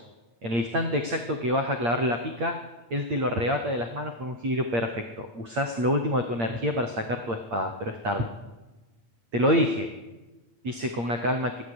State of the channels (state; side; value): late; left; 8.7 ms